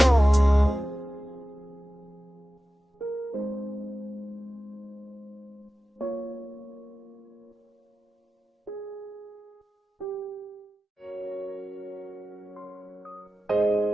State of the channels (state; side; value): normal; both; correlation 0.94